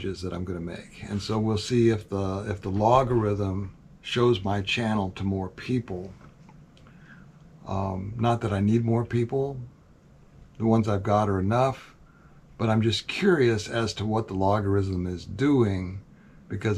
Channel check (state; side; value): identical; both; correlation 1.00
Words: that I'm going to make, and so we'll see if the logarithm shows my channel to more people. Not that I need more people; the ones I've got are enough. But I'm just curious as to what the logarithm is doing,